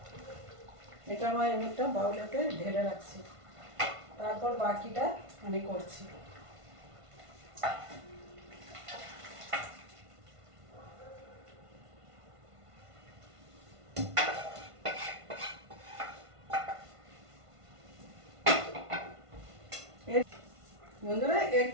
এটা আমার একটা বাউলেতে ঢেলে রাখছি, তারপর বাকিটা আমি করছি। বন্ধুরা এর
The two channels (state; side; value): late; left; 1.5 ms